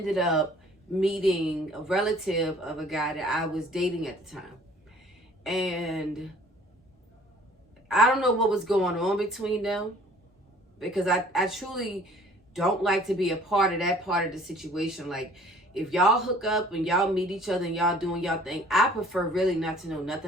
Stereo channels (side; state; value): both; normal; correlation 0.53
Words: up meeting a relative of a guy that I was dating at the time. And I don't know what was going on between them, because I truly don't like to be a part of that part of the situation. Like, if y'all hook up and y'all meet each other and y'all doing y'all thing, I prefer really not to know